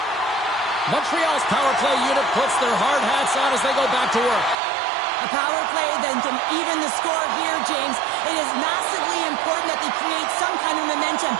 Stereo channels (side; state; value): left; drops out; at 4.5 s